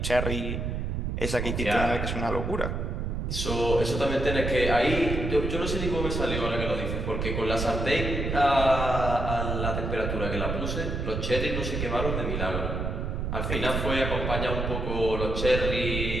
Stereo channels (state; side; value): noise; right; rumble, 2 dB below the sound